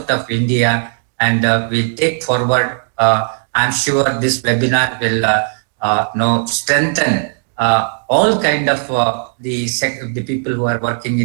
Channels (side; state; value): left; silent; digital silence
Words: of India, and we'll take forward. I'm sure this webinar will strengthen all kind of the people who are working